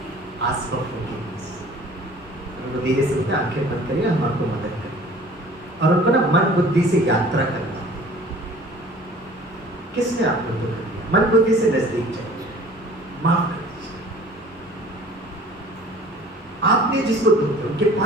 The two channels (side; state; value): both; normal; correlation 0.48